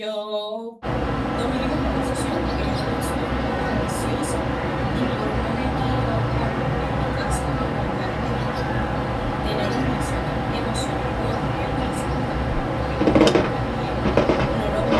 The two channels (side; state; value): both; identical; correlation 1.00